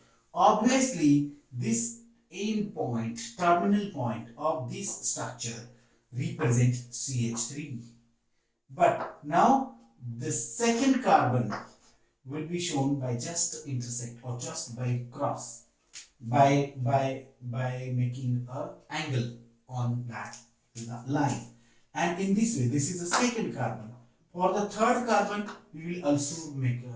Obviously, this end point, terminal point of this structure represent CH3. But now the second carbon will be shown by just intersect or just by cross, by making a angle on that line. And in this way, this is the second carbon. For the third carbon, we will also make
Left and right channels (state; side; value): identical; both; correlation 1.00